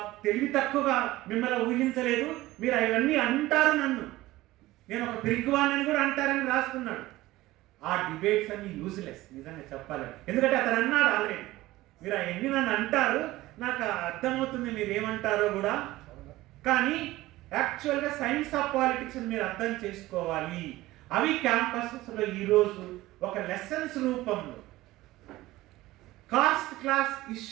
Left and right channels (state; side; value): quieter; left; 17.6 dB